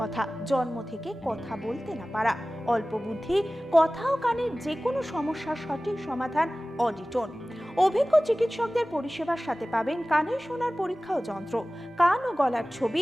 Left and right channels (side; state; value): both; normal; correlation 0.97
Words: জন্ম থেকে কথা বলতে না পারা, অল্প বুদ্ধি, কথা ও কানের যে কোনো সমস্যার সঠিক সমাধান অডিটোন। অভিজ্ঞ চিকিৎসকদের পরিষেবার সাথে পাবেন কানে শোনার পরীক্ষা ও যন্ত্র, কান ও গলার ছবি,